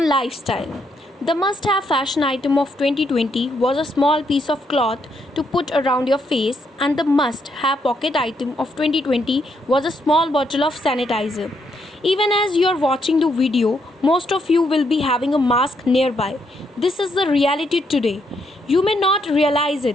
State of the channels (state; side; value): normal; both; correlation 0.76